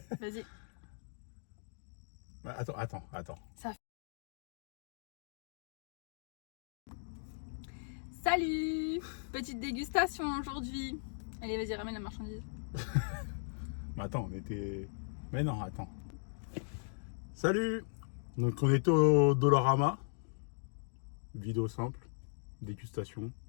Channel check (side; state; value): right; silent; digital silence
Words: Vas-y. Attends. Salut. Petite dégustation aujourd'hui. Allez, vas-y, ramène la marchandise. Mais attends, on était... Mais non, attends. Salut. Donc on était au Dollarama. Vidéo simple. Dégustation.